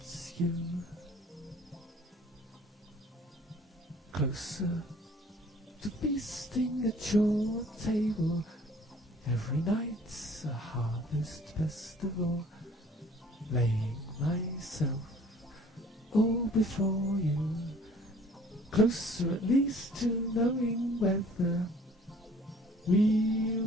you. Closer to feasting at your table, every night's a harvest festival, laying myself all before you. Closer at least to knowing whether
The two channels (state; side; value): normal; both; correlation 0.53